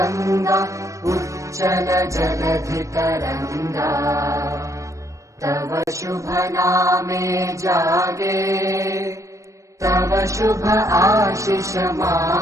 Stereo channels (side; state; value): left; late; 0.15 ms